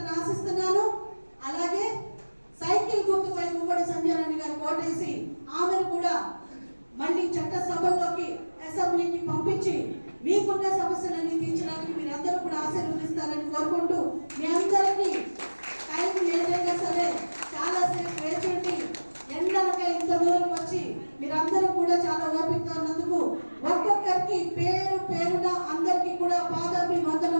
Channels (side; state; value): both; inverted; correlation -1.00